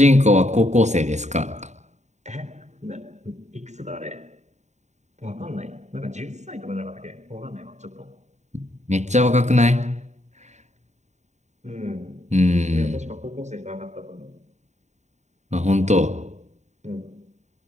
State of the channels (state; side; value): late; left; 0.34 ms